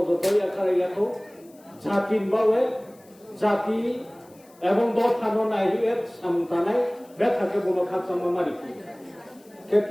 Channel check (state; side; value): noise; left; hiss, 29 dB below the sound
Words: Akarayako Jatin Bawe Jati এবং দল থানো নাই এর সামতানাই বেথাকে বলো খাচ্ছা মামারি